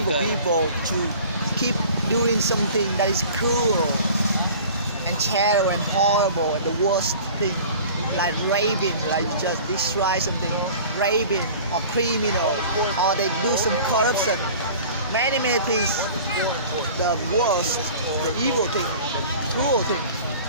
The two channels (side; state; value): both; inverted; correlation -0.43